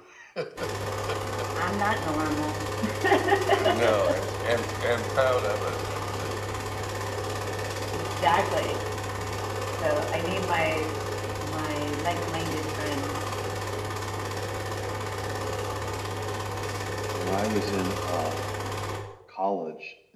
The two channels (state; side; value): identical; both; correlation 1.00